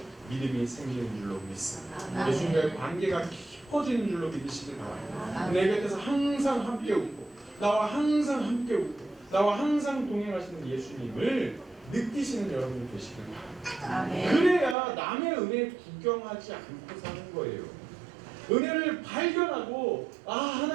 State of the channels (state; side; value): drops out; left; at 14.8 s